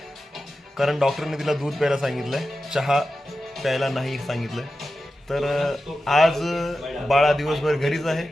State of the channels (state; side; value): normal; both; correlation 0.92